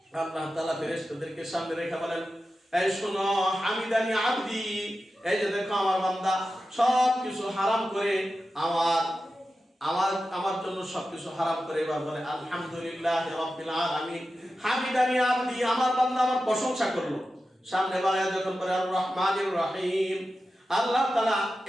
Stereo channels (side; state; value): both; normal; correlation 0.92